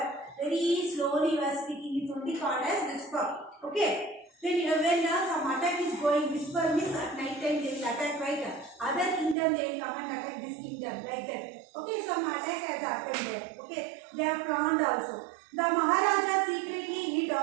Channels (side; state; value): left; drops out; at 9.3 s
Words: Very slowly you are speaking. It's only called as whisper. Okay. When some attack is going, whisper means at night time they will attack, right? Other kingdom they will come and attack this kingdom, like that. Okay, some attack has happened there. Okay, they are planned also. The Maharaja secretly hid